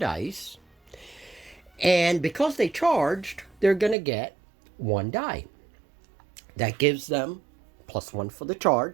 And because they charged, they're going to get 1 die. That gives them +1 for the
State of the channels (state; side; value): drops out; left; at 4.0 s